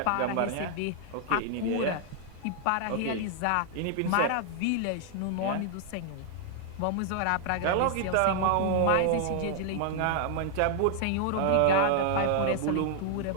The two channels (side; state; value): both; different; correlation -0.01